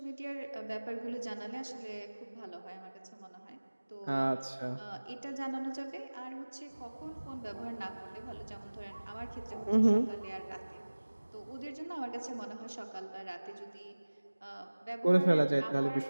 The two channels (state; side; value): inverted; both; correlation -1.00